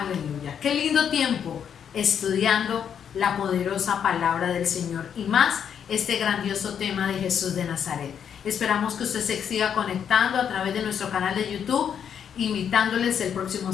Qué lindo tiempo estudiando la poderosa palabra del Señor y más este grandioso tema de Jesús de Nazaret. Esperamos que usted se siga conectando a través de nuestro canal de YouTube, invitándoles el próximo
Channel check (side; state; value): right; quieter; 8.2 dB